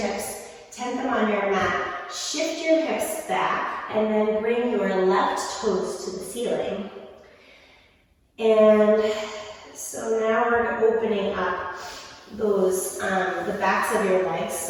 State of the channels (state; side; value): identical; both; correlation 1.00